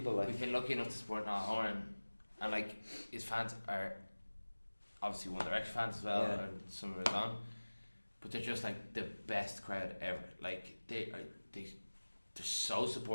like. We've been lucky enough to support Niall Horan, and like his fans are obviously One Direction fans as well, Yeah. and some of us on, but they're just like the best crowd ever. Like they're so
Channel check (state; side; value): inverted; both; correlation -1.00